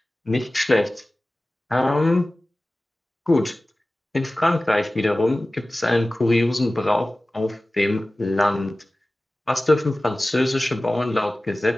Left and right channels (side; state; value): both; normal; correlation 0.97